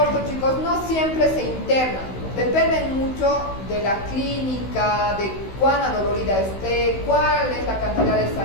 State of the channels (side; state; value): right; late; 16 ms